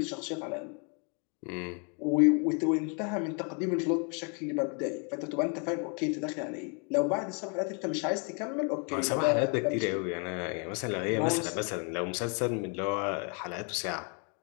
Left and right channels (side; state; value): right; quieter; 37.7 dB